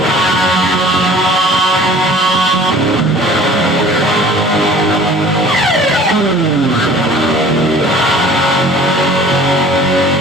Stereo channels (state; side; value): normal; both; correlation 0.48